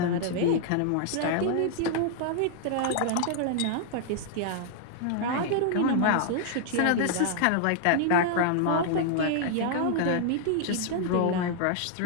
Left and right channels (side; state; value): both; different; correlation -0.01